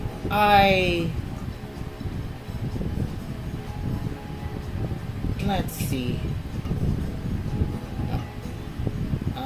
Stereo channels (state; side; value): identical; both; correlation 1.00